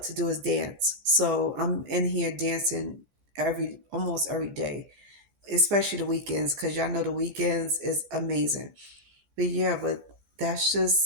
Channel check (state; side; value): late; left; 14 ms